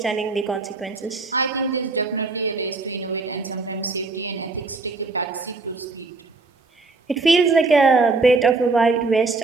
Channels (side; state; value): left; quieter; 3.8 dB